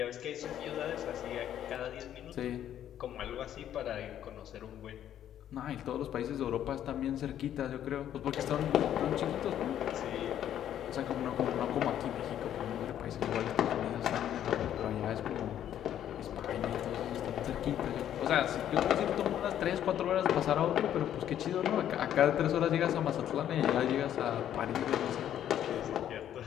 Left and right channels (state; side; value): quieter; right; 10.7 dB